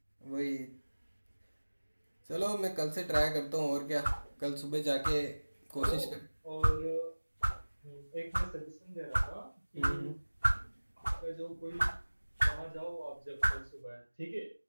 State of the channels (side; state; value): both; inverted; correlation -1.00